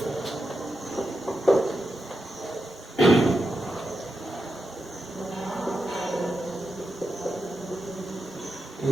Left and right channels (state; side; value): normal; both; correlation 0.88